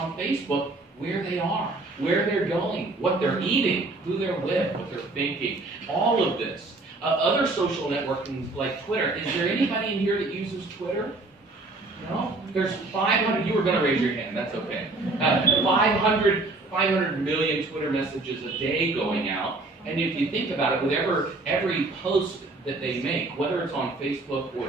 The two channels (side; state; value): left; quieter; 3.2 dB